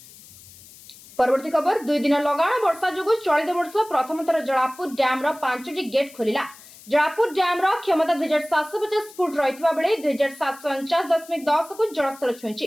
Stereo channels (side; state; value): left; noise; hiss, 21 dB below the sound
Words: परवर्ती खबर दुई दिन लगाण वर्षा जोगु चलित वर्ष प्रथम थर जलापुर डैम रो 5टी गेट खोलिला। जलापुर डैम रो क्षमता 2750 फुट रहितबा बेले 2749.10 को जलस्तर छुईछि।